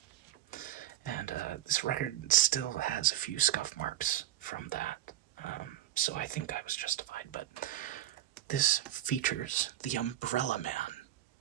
And this record still has a few scuff marks from that, so I think I was justified. But this features the Umbrella Man,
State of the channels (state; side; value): quieter; left; 12.9 dB